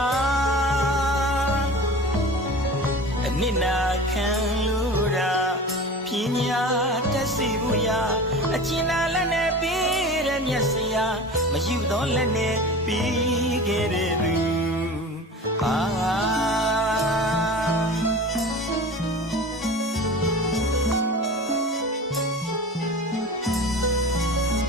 အနစ်နာခံလို့ရာပညာတတ်စီဘူးရာအကျဉ်းလာလက်နဲ့ပြီးတဲ့မျက်စရာမယူတော့လက်နဲ့ပြီးခဲ့တဲ့သူ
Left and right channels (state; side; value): normal; both; correlation 0.35